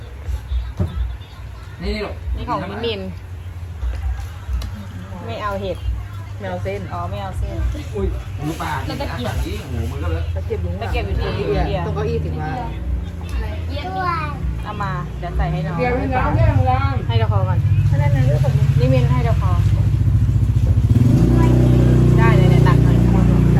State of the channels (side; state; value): both; identical; correlation 1.00